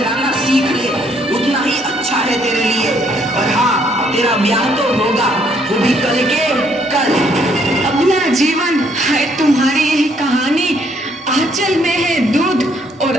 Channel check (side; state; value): both; normal; correlation 0.67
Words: सीख ले, उतना ही अच्छा है तेरे लिए। और हाँ, तेरा ब्याह तो होगा, वो भी कल के कल। अपना जीवन है तुम्हारी यही कहानी, आंचल में है दूध और